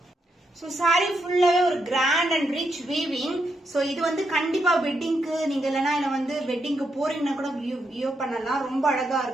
சோ சாரி ஃபுல்லாவே ஒரு கிராண்ட் அண்ட் ரிச் வீவிங். சோ இது வந்து கண்டிப்பா வெட்டிங்க்கு நீங்க இல்லனா இல்ல வந்து வெட்டிங்க்கு போறீங்கன்னா கூட வியூ பண்ணலாம். ரொம்ப அழகா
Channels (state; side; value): normal; both; correlation 0.81